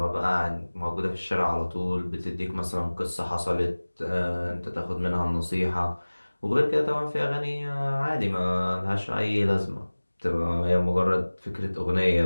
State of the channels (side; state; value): both; inverted; correlation -1.00